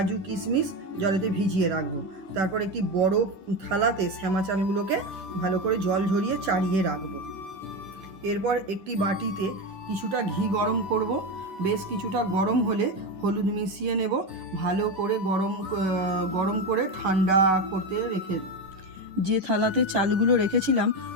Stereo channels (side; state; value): left; late; 10 ms